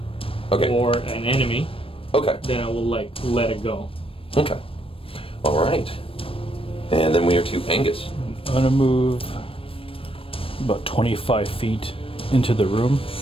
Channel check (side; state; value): right; late; 0.27 ms